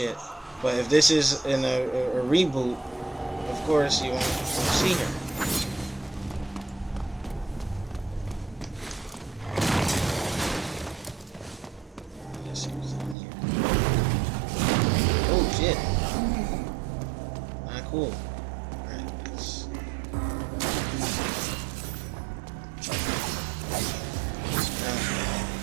But if this is in a reboot, of course you won't see her. Let's see what's in here. Oh shit. Not cool. Alright, let's...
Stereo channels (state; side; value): drops out; left; at 13.2 s